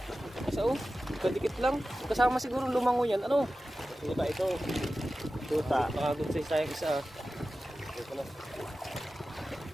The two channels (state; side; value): normal; both; correlation 0.94